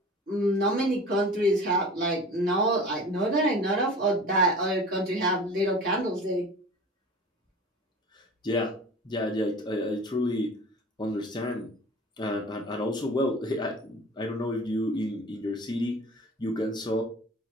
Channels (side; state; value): both; normal; correlation 0.40